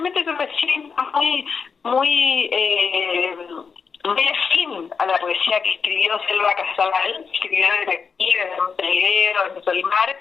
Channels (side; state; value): right; quieter; 5.7 dB